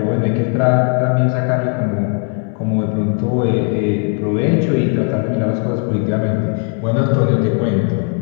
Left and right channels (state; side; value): quieter; right; 36.5 dB